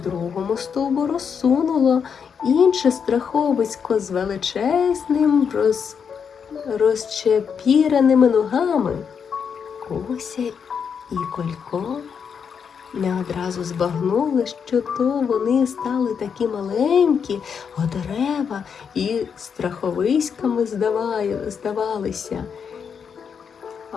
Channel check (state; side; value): quieter; right; 6.8 dB